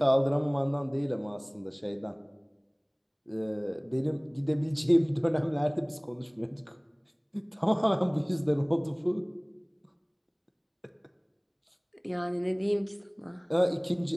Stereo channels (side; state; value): both; identical; correlation 1.00